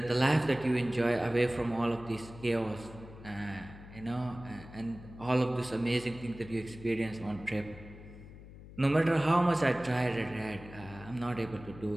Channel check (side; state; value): left; noise; hum, 16 dB below the sound